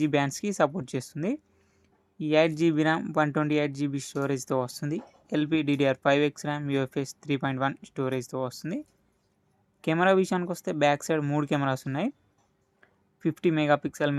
బ్యాండ్స్కి సపోర్ట్ చేస్తుంది. 8GB ర్యామ్, 128GB స్టోరేజ్తో వస్తుంది. LPDDR5X ర్యామ్, UFS 3.1 స్టోరేజ్తో వస్తుంది. కెమెరా విషయానికి వస్తే బ్యాక్ సైడ్ 3 కెమెరాస్ ఉన్నాయి. 50 మెగాపిక్సెల్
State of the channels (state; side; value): identical; both; correlation 1.00